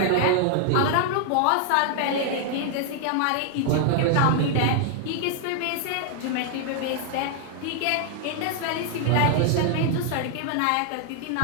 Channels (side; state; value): both; different; correlation 0.00